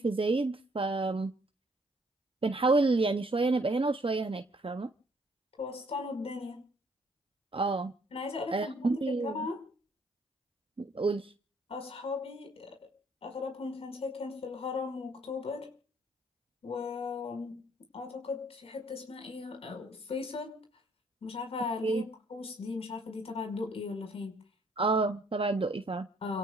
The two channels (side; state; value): both; normal; correlation 0.65